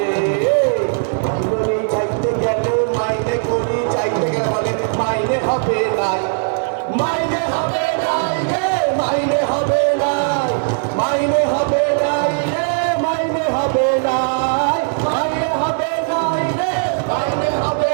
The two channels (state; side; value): silent; left; digital silence